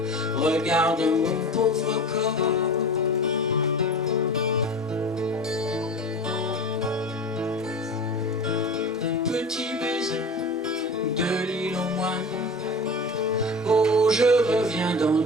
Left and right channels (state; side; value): normal; both; correlation 0.33